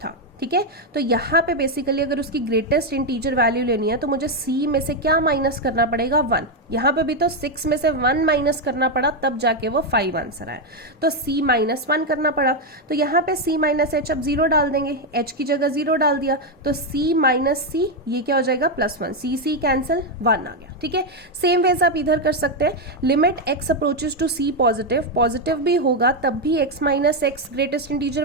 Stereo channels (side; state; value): both; normal; correlation 0.04